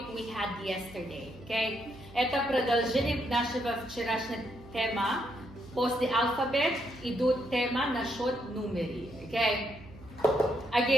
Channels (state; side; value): noise; right; hum, 19 dB below the sound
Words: we had yesterday. Okay? Это продолжение нашего вчерашнего тема. После алфабет идут тема насчет numeri. Okay?